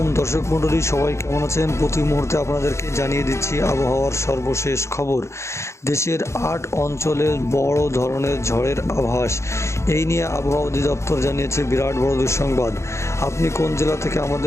দর্শক মণ্ডলী, সবাই কেমন আছেন? প্রতি মুহূর্তে আপনাদেরকে জানিয়ে দিচ্ছি আবহাওয়ার সর্বশেষ খবর। দেশের ৮ অঞ্চলে বড় ধরনের ঝড়ের আভাস। এই নিয়ে আবহাওয়া অধিদপ্তর জানিয়েছে বিরাট বড় দুঃসংবাদ। আপনি কোন জেলা থেকে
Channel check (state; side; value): late; right; 0.14 ms